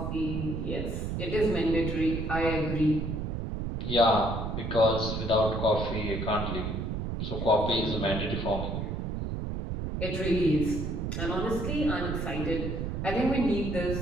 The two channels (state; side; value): noise; right; rumble, 3 dB below the sound